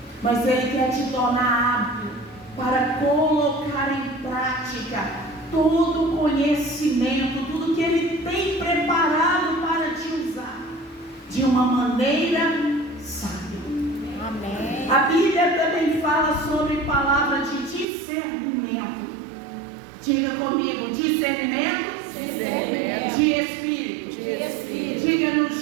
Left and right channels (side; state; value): left; drops out; at 17.9 s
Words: mas Ele quer te tornar hábil para colocar em prática todo o conhecimento, tudo que Ele tem preparado para te usar de uma maneira sábia. Amém. A Bíblia também fala sobre palavra de discernimento. Diga comigo: discernimento, de espírito. Diga: